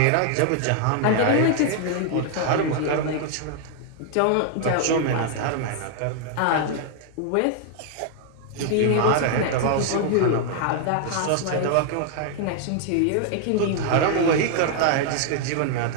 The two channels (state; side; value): different; both; correlation 0.00